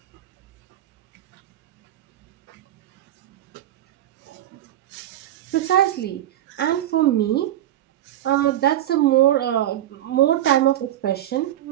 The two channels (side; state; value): left; quieter; 12.8 dB